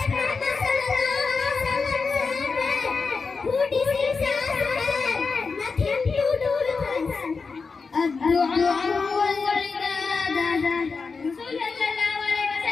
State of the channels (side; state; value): right; quieter; 4.7 dB